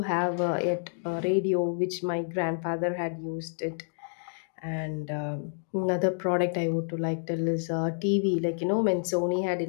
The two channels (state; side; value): silent; right; digital silence